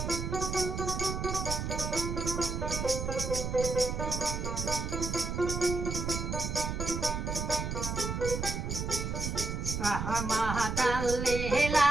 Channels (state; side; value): noise; right; rumble, 3 dB below the sound